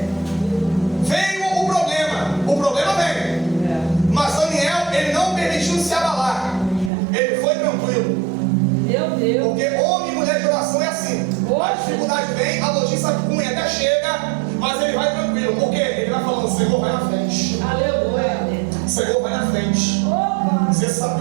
veio o problema. O problema veio. Mas Daniel, ele não permitiu se abalar. Ele foi tranquilo. Meu Deus. Porque homem e mulher de oração é assim. A dificuldade vem, a notícia ruim até chega, mas ele vai tranquilo. Por quê? Ele vai falando, Senhor, vai na frente. Aleluia. Senhor, vai na frente. Opa. Você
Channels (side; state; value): left; drops out; at 6.9 s